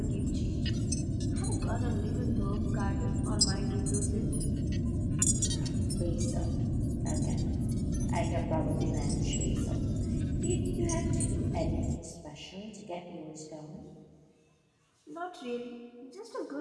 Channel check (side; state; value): both; identical; correlation 1.00